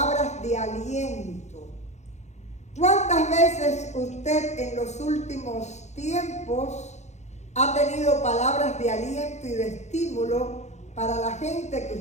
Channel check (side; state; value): right; late; 0.33 ms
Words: de aliento, ¿cuántas veces usted en los últimos tiempos ha tenido palabras de aliento y de estímulo para la gente que